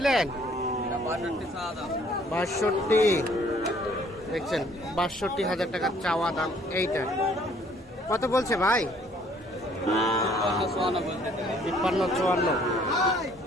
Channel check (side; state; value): both; normal; correlation 0.60